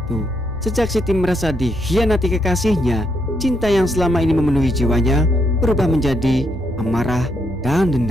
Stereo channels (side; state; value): both; normal; correlation 0.77